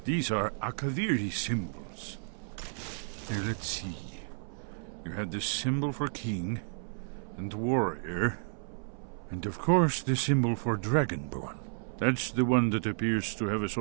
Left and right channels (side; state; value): left; silent; 56 dB below the other